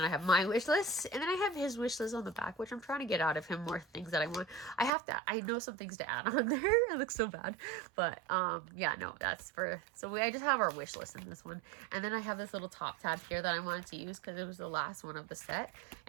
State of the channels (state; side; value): drops out; left; at 4.9 s